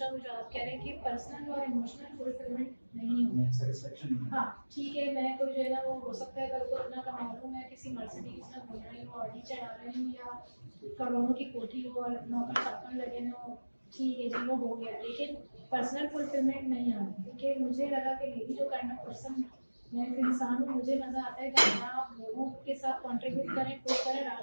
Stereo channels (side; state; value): both; inverted; correlation -1.00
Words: वो जो आप कह रहे हैं कि पर्सनल और इमोशनल फुलफिलमेंट नहीं होगा। सेटिस्फेक्शन हाँ ठीक है, मैं कोई जो है ना वो हो सकता है कल को इतना कमा लूँ, मैं किसी मर्सिडीज में घूम रही हूँ, ऑडी चढ़ा रही हूँ या करोड़ों की कोठी हो और नौकर चाकर लगे हो, ठीक है जी वो हो गया, लेकिन पर्सनल फुलफिलमेंट नहीं आ रही। क्योंकि मुझे लगा कि मेरी जो काइंड ऑफ पर्सन मैं एक इंसान हूँ, मुझे मज़ा आता है कि आप लोगों के साथ कंट्रीब्यूट करें, पुश करें,